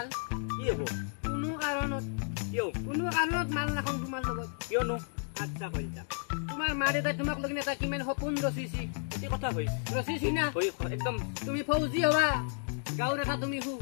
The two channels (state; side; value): silent; right; 56 dB below the other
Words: কি হ'ব কোনো কাৰণত মাল নাখাওঁ তোমাৰ লগত কিয়নো আচ্ছা কলিতা তোমাৰ মা দেউতাই তোমাক লগিন এটা কিমান সপোন ৰচিছি কি কথা কৈছে ৰচিছি না একদম তুমি ফৌজি হবা গাঁৱৰ এটা তুমি